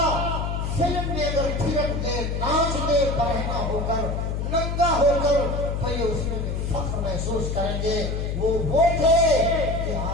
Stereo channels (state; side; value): noise; left; hum, 2 dB below the sound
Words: فلم میں اگر تھرک دے, ناچ دے, برہنہ ہو کر, ننگا ہو کر, تو یہ اس میں فخر محسوس کریں گے. وہ تھے کہ